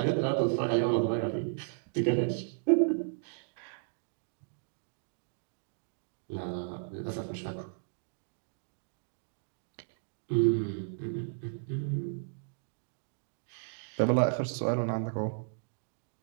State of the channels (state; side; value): silent; left; digital silence